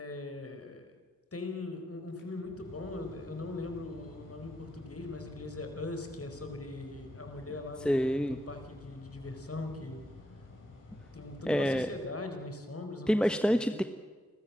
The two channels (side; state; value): both; normal; correlation 0.83